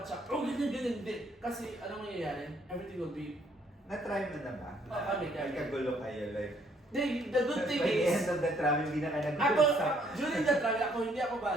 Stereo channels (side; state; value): both; normal; correlation 0.66